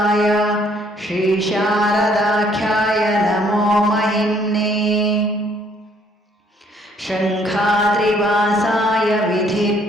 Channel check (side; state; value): both; normal; correlation 0.64